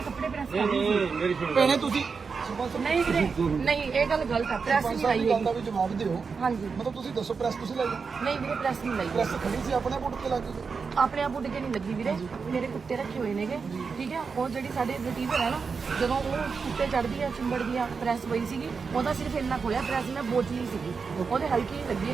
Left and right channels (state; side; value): quieter; left; 5.2 dB